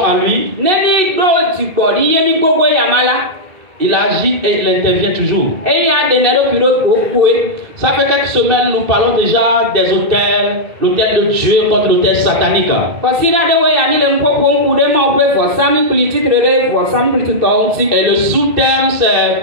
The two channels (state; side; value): late; left; 2.6 ms